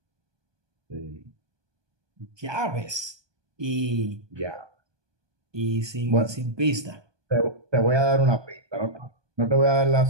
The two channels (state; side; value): late; left; 1.2 ms